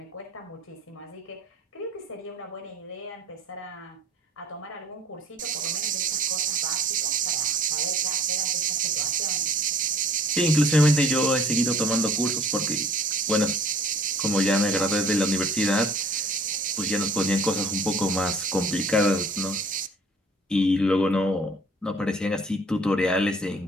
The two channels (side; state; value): both; normal; correlation 0.52